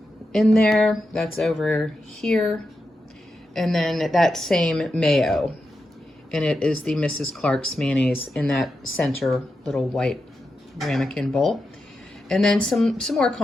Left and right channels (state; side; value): normal; both; correlation 0.88